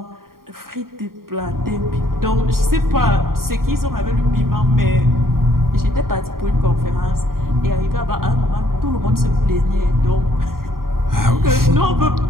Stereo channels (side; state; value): left; late; 0.92 ms